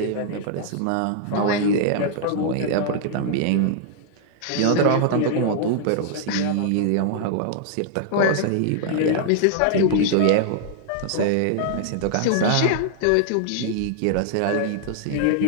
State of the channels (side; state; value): both; different; correlation -0.01